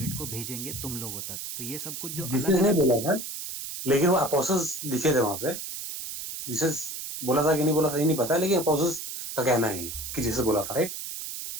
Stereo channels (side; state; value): right; noise; hiss, 7 dB below the sound